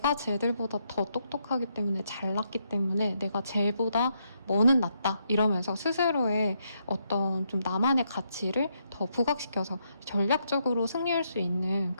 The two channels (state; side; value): inverted; both; correlation -0.77